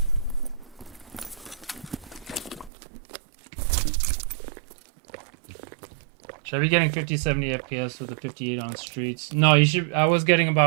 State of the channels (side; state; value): left; drops out; at 2.7 s